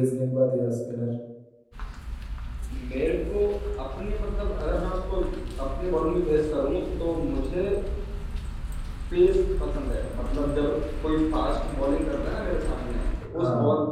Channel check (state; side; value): identical; both; correlation 1.00